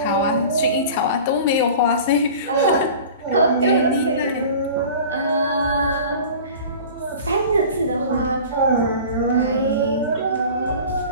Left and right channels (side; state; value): both; inverted; correlation -0.39